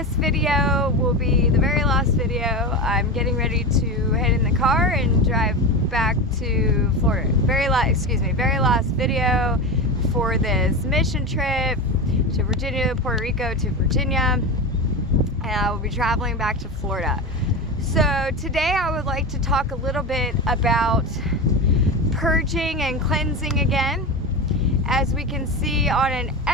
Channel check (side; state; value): both; normal; correlation 0.22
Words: this video will be the very last video. I'm getting ready to head in the car and drive back to Florida. Very last video for this mission trip to Virginia, Puerto Rico to Virginia, and I will be traveling back to Florida. So today I would like to talk a little bit about purging and cleansing again. As we can see, on an